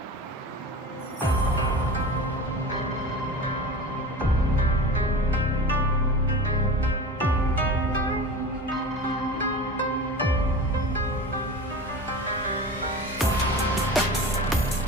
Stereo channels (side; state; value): both; normal; correlation 0.33